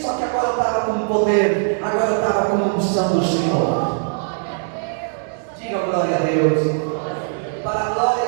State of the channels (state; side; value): silent; left; digital silence